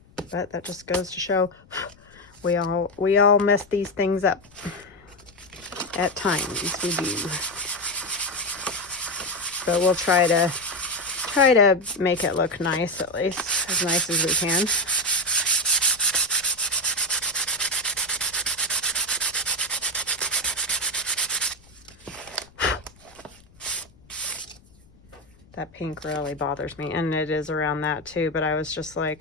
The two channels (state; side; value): noise; left; rumble, 27 dB below the sound